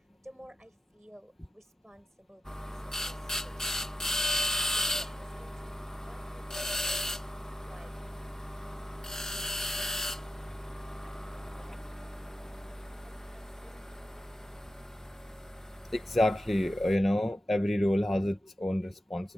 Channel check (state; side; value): normal; both; correlation 0.91